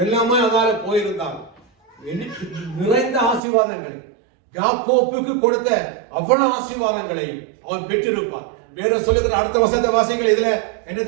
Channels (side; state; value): left; drops out; at 3.4 s